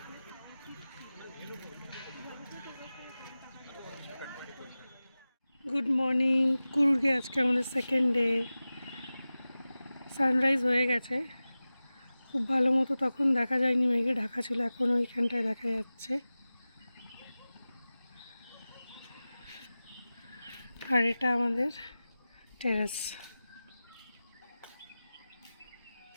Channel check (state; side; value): inverted; both; correlation -0.97